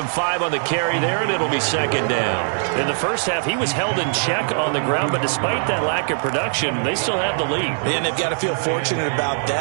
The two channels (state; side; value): silent; left; 65 dB below the other